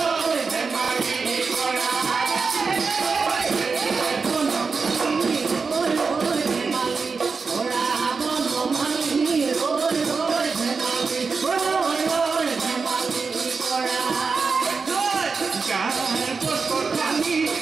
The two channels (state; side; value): quieter; left; 4.8 dB